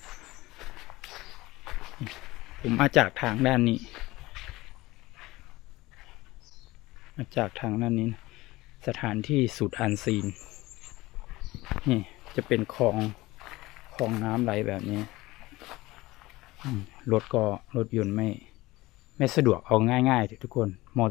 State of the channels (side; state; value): right; quieter; 19.5 dB